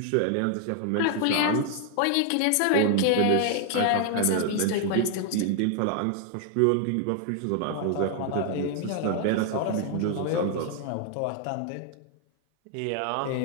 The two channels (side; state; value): both; different; correlation 0.00